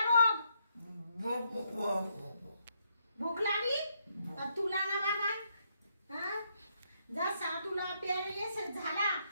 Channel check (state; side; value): inverted; both; correlation -0.76